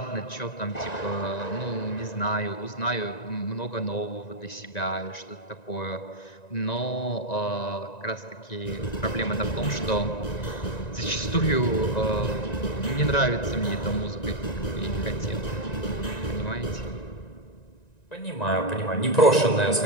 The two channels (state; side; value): late; right; 1.9 ms